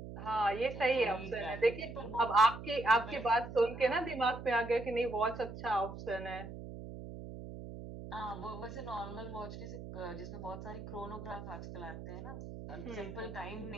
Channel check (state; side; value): noise; right; hum, 10 dB below the sound